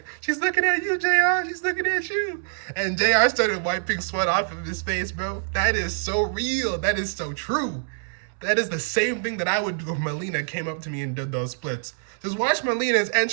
"She's looking at you, JR. She's looking at you." And JR started wiping sweat off of his face, bro. That is so real. That is so true. That is the same thing that I would do if Melina came up to me and did those splits. Just watch Melina's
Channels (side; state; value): left; silent; 60 dB below the other